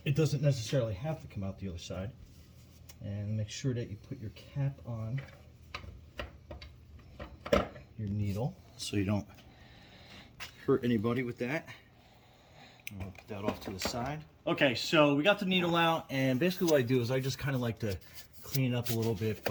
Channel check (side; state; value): both; identical; correlation 1.00